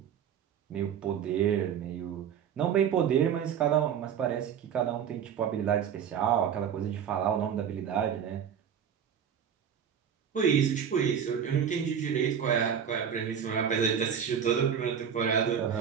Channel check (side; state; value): left; quieter; 8.2 dB